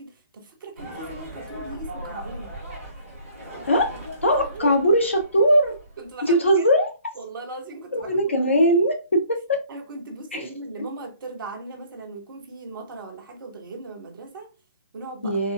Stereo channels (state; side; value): inverted; both; correlation -0.56